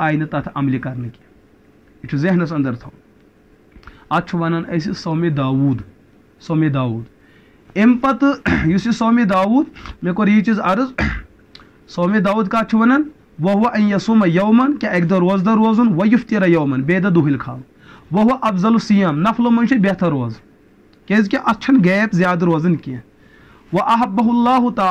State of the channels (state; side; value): identical; both; correlation 1.00